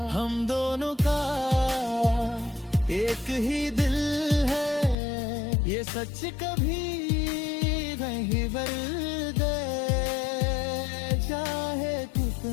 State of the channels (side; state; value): right; drops out; at 5.0 s